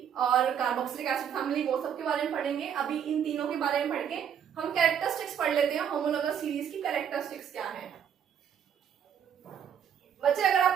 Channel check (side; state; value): left; quieter; 8.4 dB